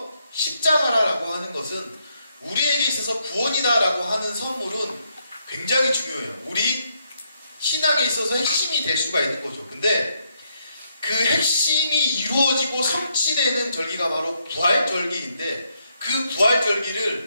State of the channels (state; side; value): inverted; both; correlation -0.77